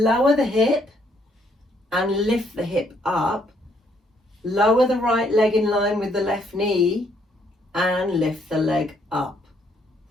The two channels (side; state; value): both; normal; correlation 0.69